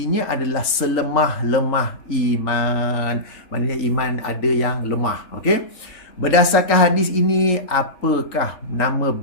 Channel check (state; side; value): late; right; 3.8 ms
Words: adalah selemah-lemah iman. Maksudnya iman ada yang lemah. Okey. Berdasarkan hadis ini, apakah nama